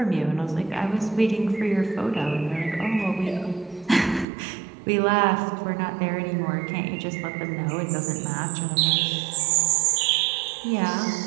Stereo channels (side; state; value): left; drops out; at 4.2 s